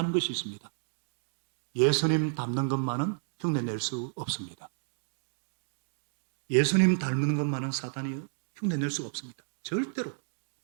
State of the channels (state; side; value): silent; left; digital silence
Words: 것이 있습니다. 예수님 닮는 것만은 흉내낼 수 없습니다. 예수님 닮는 것만은 사탄이 흉내낼 수가 없습니다. 절대로.